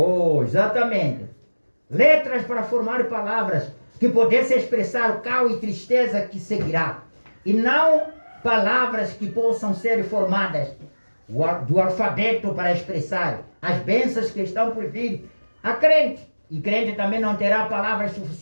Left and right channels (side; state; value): both; inverted; correlation -1.00